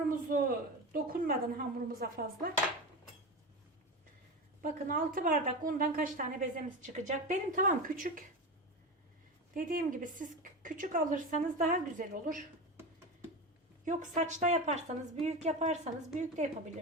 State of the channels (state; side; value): normal; both; correlation 0.23